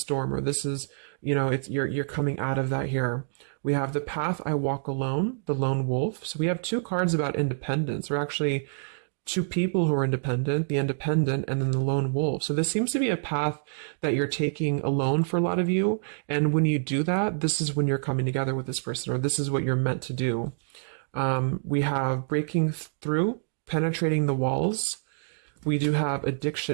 or this is, you're coming out of that here. We have the path I walk alone, the lone wolf. So we have two cards about independence, or actually two people who are independent, the independent, and then the lone wolf. So this seems to be a path that you're taking alone for a lot of you. And when you do that, this is when you're coming together with this person, or this is what you're meant to do. We have breaking through, penetrating the walls. We do have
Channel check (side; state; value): left; silent; digital silence